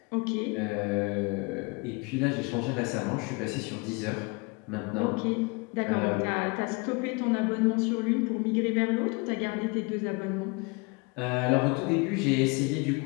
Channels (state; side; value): quieter; right; 29.0 dB